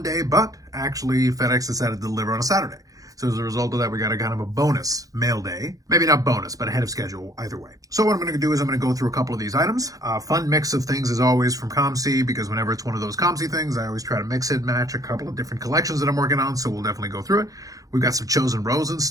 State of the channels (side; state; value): left; late; 0.17 ms